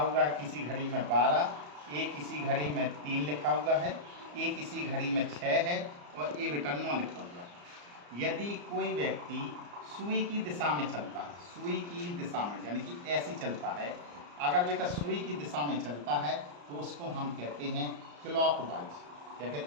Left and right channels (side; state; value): left; late; 34 ms